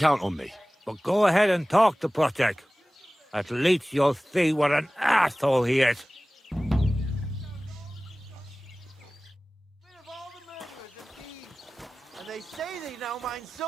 on me. But go ahead and talk to Project. At least you'll see what an asshole he is. And they say they now mine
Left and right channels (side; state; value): both; normal; correlation 0.98